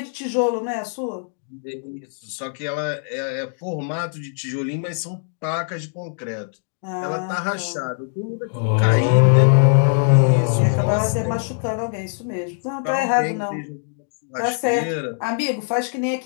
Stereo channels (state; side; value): silent; right; 64 dB below the other